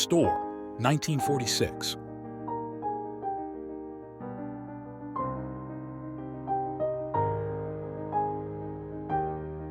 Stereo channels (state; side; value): identical; both; correlation 1.00